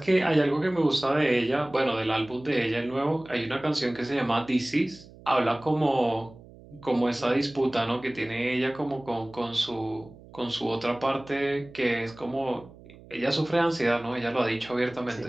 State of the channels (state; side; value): noise; right; hum, 21 dB below the sound